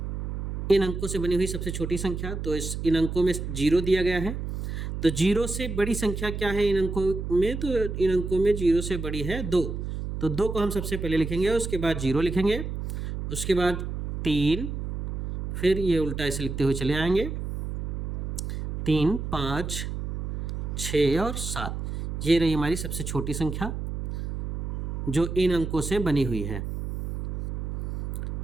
इन अंकों से बनी हुई सबसे छोटी संख्या, तो इन अंकों में 0 दिया गया है। तो 0 से बड़ी संख्या क्या है इन अंकों में? तो इन अंकों में 0 से बड़ी है 2। तो 2 को हम सबसे पहले लिखेंगे, उसके बाद 0 लिखेंगे, उसके बाद 3, फिर ये उल्टा ऐसे लिखते हुए चले आएंगे, 3, 5, 6 और 7। ये रही हमारी सबसे छोटी संख्या जो इन अंकों से बनी हुई है।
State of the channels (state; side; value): noise; right; hum, 4 dB below the sound